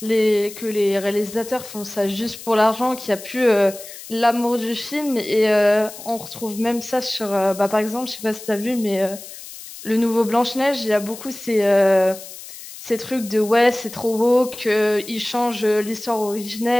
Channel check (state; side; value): noise; left; hiss, 14 dB below the sound